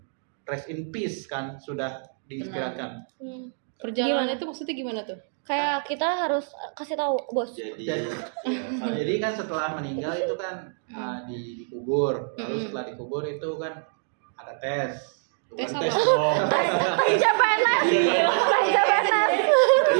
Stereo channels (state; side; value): silent; left; digital silence